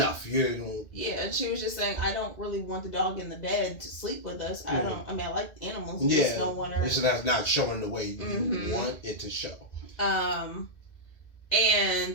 Yeah, and she was just saying, I don't really want the dog in the bed to sleep with us. I like animals. Yeah. Just don't want her. It's not showing the way you want it to show. And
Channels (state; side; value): late; right; 1.9 ms